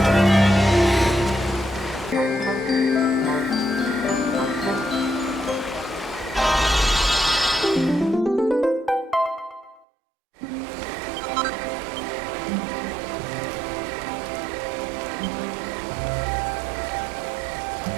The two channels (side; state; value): left; drops out; at 9.9 s